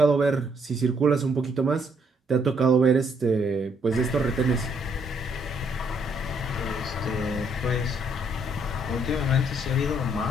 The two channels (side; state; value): both; normal; correlation 0.70